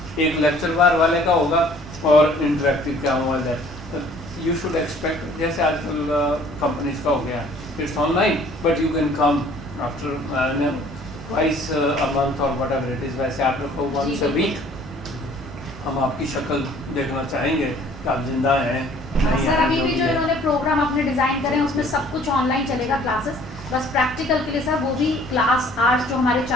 एक लेक्चर बार वाले का होगा और इंटरेक्टिव क्या हुआ। यू शुड एक्सपेक्ट जैसे आजकल कंपनीज का हो गया, it's online but you can come after twice a month और वट एवर इट इज़। वैसे आप लोग को वंस अ वीक हम आपकी शक्ल देखना चाहेंगे कि आप जिंदा हैं नहीं सर। हैं, अभी भी जो इन्होंने प्रोग्राम अपने डिजाइन करे हैं उसमें सब कुछ ऑनलाइन चलेगा क्लासेस, बस प्रैक्टिकल के लिए सर वो भी क्लास आवर्स जो हमारे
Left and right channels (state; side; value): normal; both; correlation 0.55